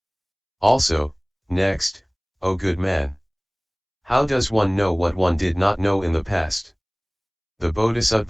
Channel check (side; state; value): both; identical; correlation 1.00